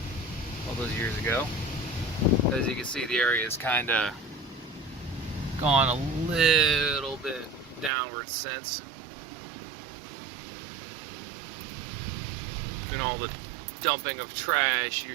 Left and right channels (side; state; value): left; drops out; at 7.9 s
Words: all those years ago. As you can see, the area is kind of gone a little bit downward since. And all the dumping of trash,